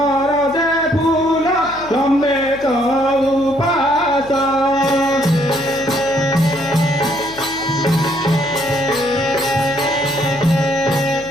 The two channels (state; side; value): noise; left; hum, 20 dB below the sound